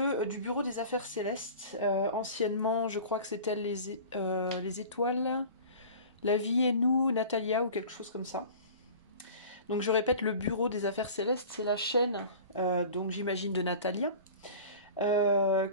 Bureau des Affaires Célestes. Anciennement, je crois que c'était les étoiles, la vie et nous, Natalia ou quelque chose comme ça. Donc je répète, le Bureau des Affaires Célestes, c'est la chaîne, donc j'imagine de Natalia,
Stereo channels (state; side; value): inverted; both; correlation -0.40